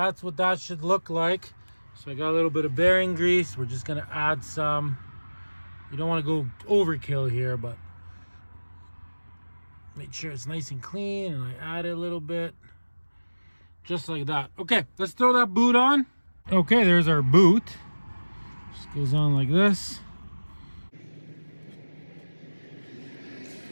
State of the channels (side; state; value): both; inverted; correlation -1.00